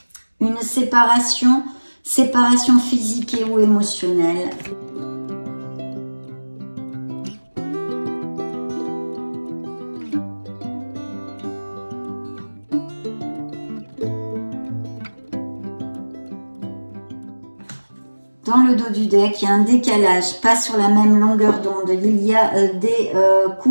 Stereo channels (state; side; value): inverted; both; correlation -1.00